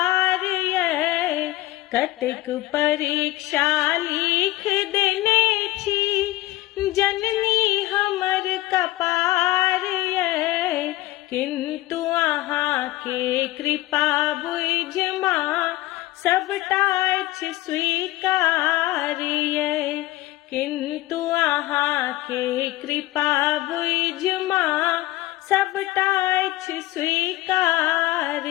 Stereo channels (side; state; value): right; quieter; 17.6 dB